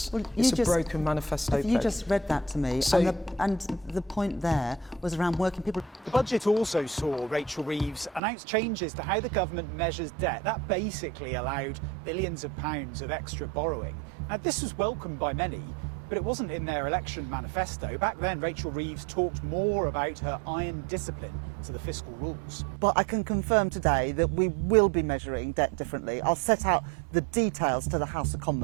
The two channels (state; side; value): drops out; left; at 8.2 s